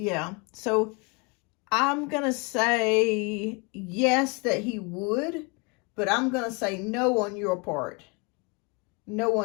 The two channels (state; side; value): quieter; right; 30.9 dB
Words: So I'm going to say yes that he would, but I'm going to say no on your part. No